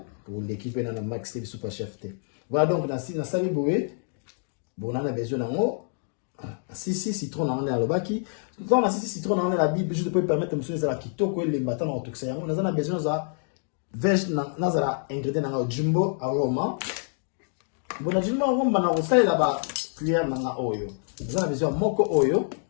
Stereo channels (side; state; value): right; silent; 60 dB below the other